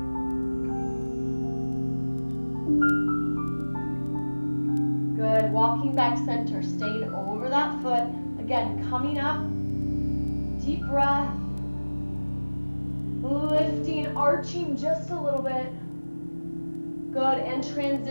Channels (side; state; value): both; inverted; correlation -1.00